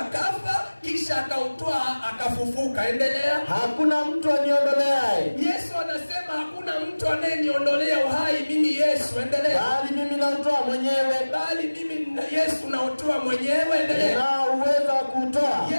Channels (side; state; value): both; inverted; correlation -1.00